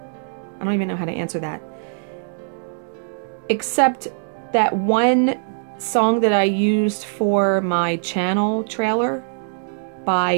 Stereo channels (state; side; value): silent; left; digital silence